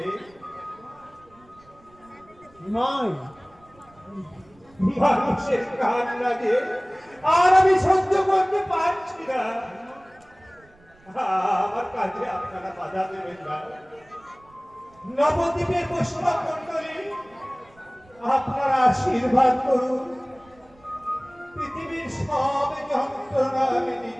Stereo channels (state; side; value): noise; right; rumble, 29 dB below the sound